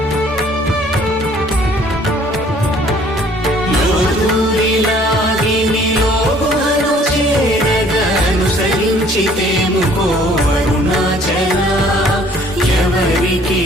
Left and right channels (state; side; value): normal; both; correlation 0.57